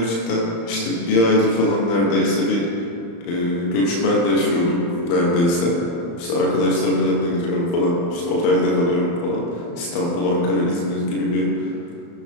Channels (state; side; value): late; right; 35 ms